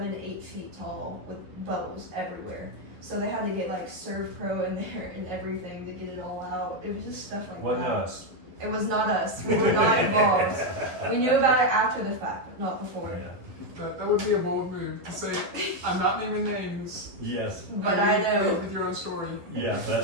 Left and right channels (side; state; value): left; late; 11 ms